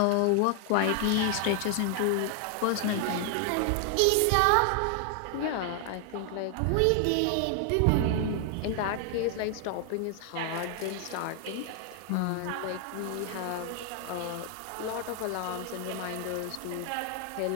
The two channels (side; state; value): both; different; correlation 0.00